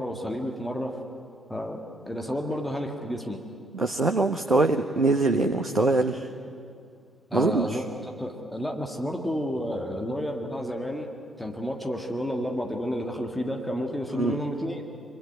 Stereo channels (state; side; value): normal; both; correlation 0.70